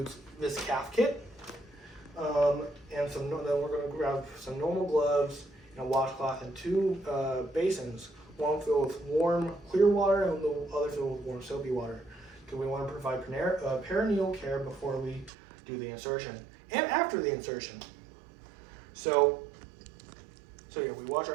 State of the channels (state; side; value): drops out; left; at 15.3 s